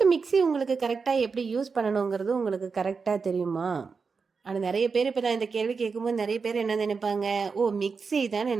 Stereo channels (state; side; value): quieter; left; 5.1 dB